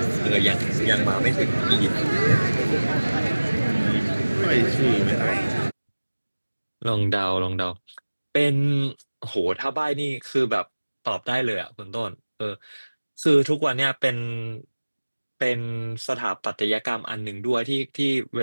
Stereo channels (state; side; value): inverted; both; correlation -1.00